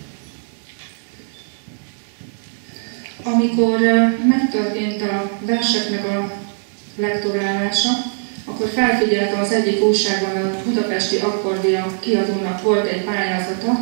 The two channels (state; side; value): silent; left; digital silence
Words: Amikor megtörtént a verseknek a lektorálása, akkor felfigyeltem az egyik újságban, a Budapesti Akkordia kiadónak volt egy